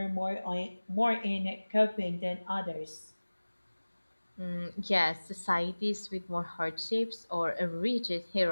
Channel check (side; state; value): both; inverted; correlation -1.00